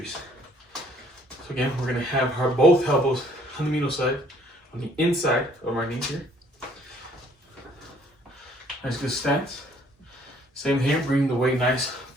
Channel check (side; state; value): both; normal; correlation 0.61